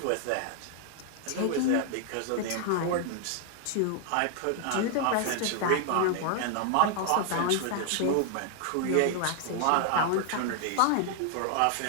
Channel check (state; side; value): different; both; correlation 0.00